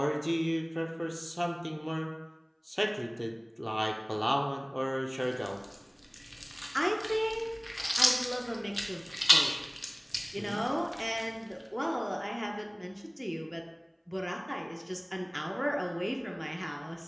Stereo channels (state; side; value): identical; both; correlation 1.00